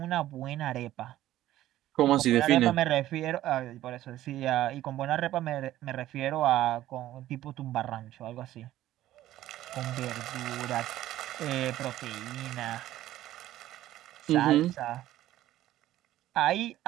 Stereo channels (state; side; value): quieter; left; 14.1 dB